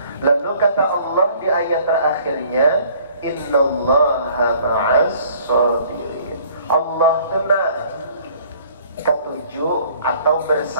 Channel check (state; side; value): inverted; both; correlation -0.56